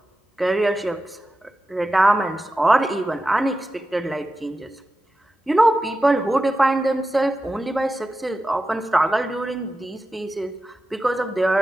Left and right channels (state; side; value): normal; both; correlation 0.92